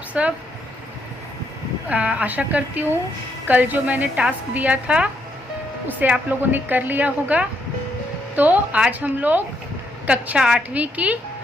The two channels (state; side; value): normal; both; correlation 0.75